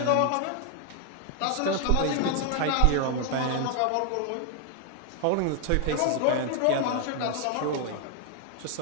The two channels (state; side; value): different; both; correlation 0.01